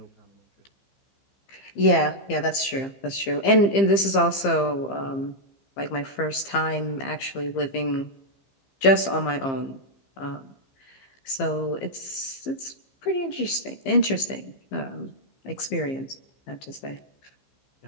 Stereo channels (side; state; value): right; late; 15 ms